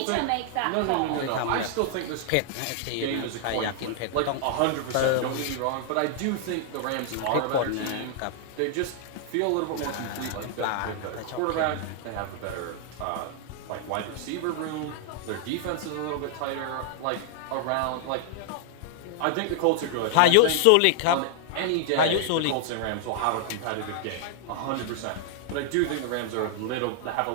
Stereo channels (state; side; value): different; both; correlation 0.00